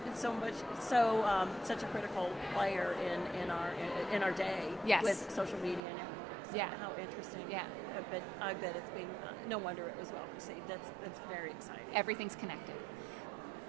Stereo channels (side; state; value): left; drops out; at 5.8 s